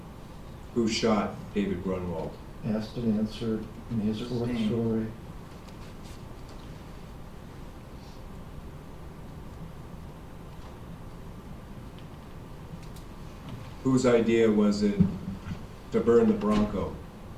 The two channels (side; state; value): both; identical; correlation 1.00